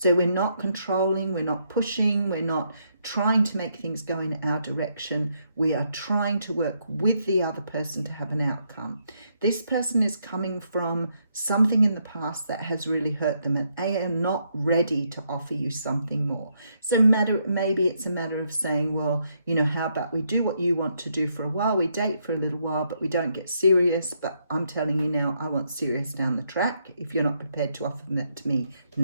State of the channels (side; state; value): both; inverted; correlation -0.76